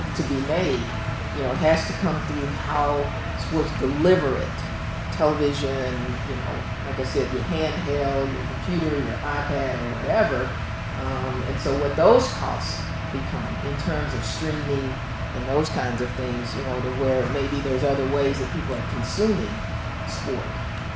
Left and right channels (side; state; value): both; identical; correlation 1.00